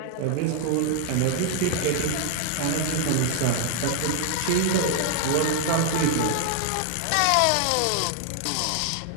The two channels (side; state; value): both; different; correlation 0.00